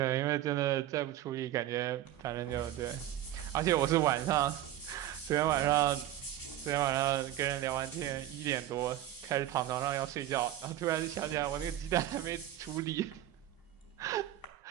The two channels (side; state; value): left; quieter; 12.9 dB